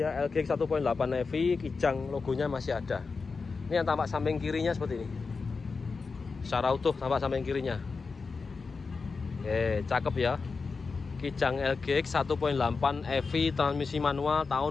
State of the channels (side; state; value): right; quieter; 4.6 dB